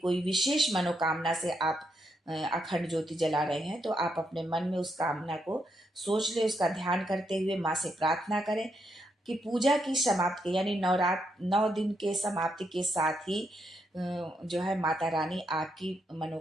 विशेष मनोकामना से आप अखंड ज्योति जला रहे हैं तो आप अपने मन में उस कामना को सोच ले, उसका ध्यान करते हुए माँ से प्रार्थना करें कि पूजा की समाप्ति यानी 9 दिन के समाप्ति के साथ ही जो है माता रानी आपकी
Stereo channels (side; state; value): both; normal; correlation 0.79